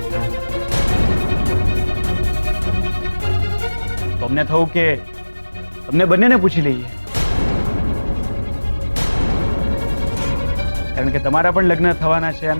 તો અમને થયું કે તમને બંનેને પૂછી લઈએ, કારણ કે તમારા પણ લગ્ન થવાના છે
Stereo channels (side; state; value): both; inverted; correlation -1.00